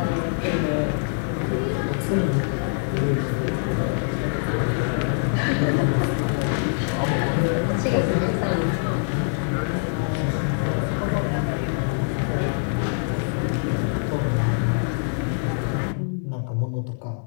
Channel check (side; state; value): right; silent; digital silence